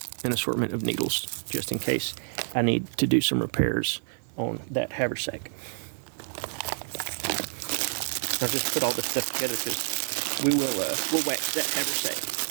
an assortment of needles, just in case I need to do some repairs on that haversack. I'll just put all this stuff together because we'll wax that haversack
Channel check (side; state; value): left; silent; 56 dB below the other